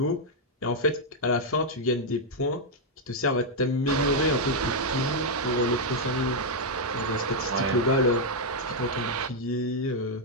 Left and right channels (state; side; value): normal; both; correlation -0.02